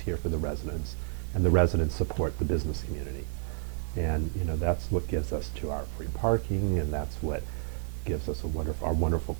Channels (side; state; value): left; silent; digital silence